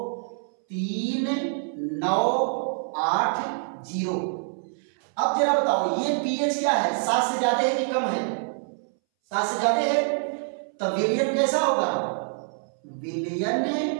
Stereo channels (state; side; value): silent; left; 61 dB below the other